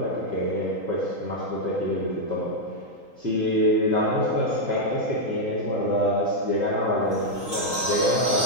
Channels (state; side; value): late; left; 3.8 ms